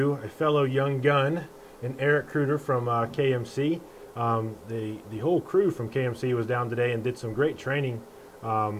a fellow young gun in Erich Kreuter from KMC. The whole crew from KMC was down today and did some great training.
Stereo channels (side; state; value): both; identical; correlation 1.00